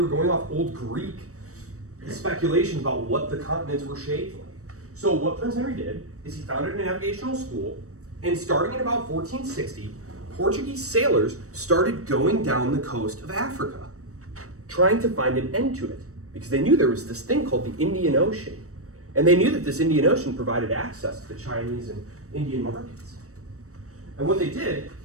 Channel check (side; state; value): left; late; 0.65 ms